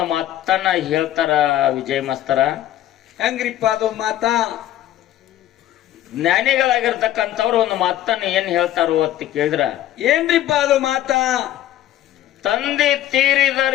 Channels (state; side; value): quieter; right; 13.1 dB